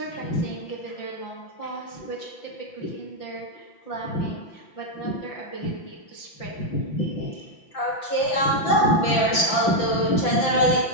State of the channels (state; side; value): late; right; 5.9 ms